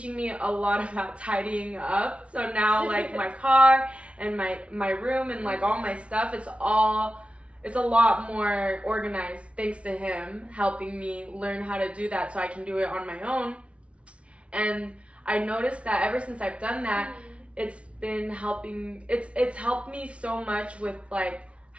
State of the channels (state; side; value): late; left; 0.061 ms